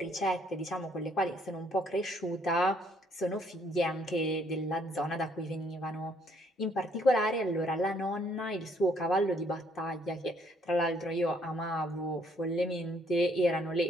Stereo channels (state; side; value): normal; both; correlation 0.67